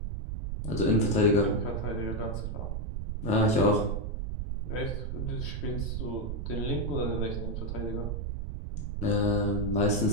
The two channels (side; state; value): right; noise; rumble, 3 dB below the sound